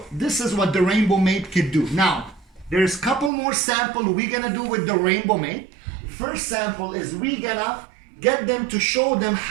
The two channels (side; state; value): left; drops out; at 3.3 s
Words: this is what the Rainbow Mate could do. Now, there's a couple more samples we're gonna do with the Rainbow Mate. First sample is we gonna get them to show them